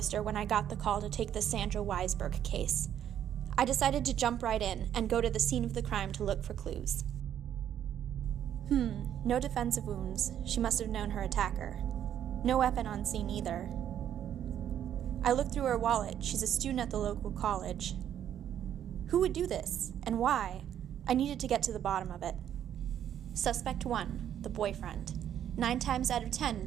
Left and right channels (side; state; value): left; quieter; 10.1 dB